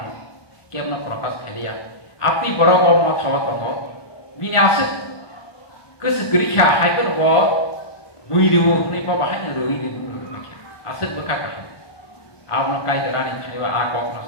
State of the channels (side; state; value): right; late; 1.2 ms